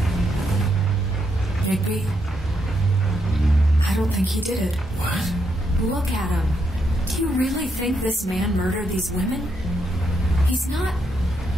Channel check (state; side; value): normal; both; correlation 0.79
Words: Bigby, I don't think he did it. What? Look at him. Do you really think this man murdered these women? He's not...